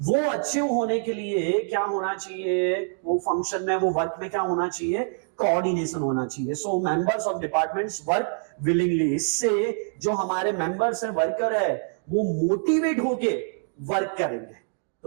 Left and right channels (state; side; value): silent; left; digital silence